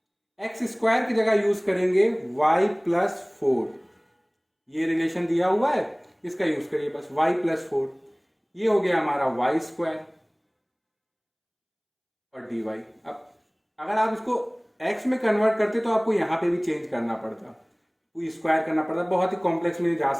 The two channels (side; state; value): both; identical; correlation 1.00